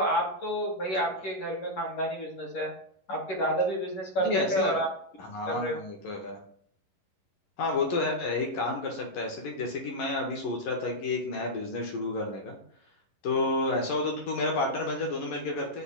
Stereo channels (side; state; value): right; late; 11 ms